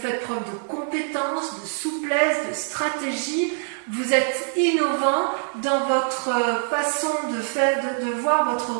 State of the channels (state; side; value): silent; left; 63 dB below the other